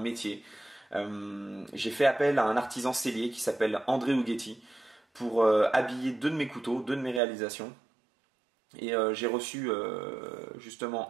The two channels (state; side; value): drops out; left; at 7.2 s